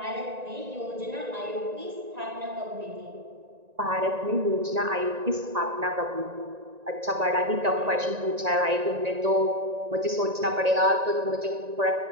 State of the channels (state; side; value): late; left; 1.9 ms